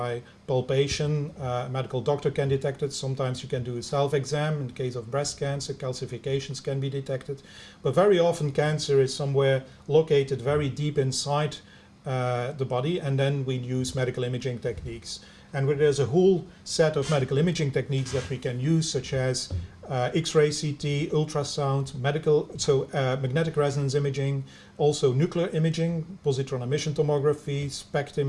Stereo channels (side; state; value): both; identical; correlation 1.00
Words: palpation. A medical doctor can detect it. Sometimes you can do a self-exam. In the case of breast cancer, calcifications can be detected. But very often cancer is somewhere located very deep inside the body, and then we use medical imaging techniques. And there's a whole set of medical imaging techniques that we can use, such as X-ray CT, ultrasound, magnetic resonance imaging, also nuclear imaging, positron emission tomography, SPECT